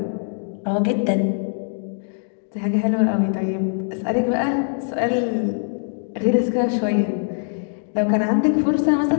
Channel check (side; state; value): right; silent; digital silence